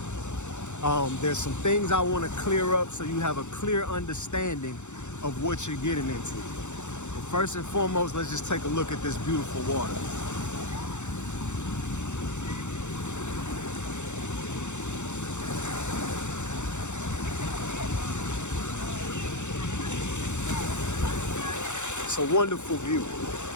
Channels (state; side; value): late; right; 0.84 ms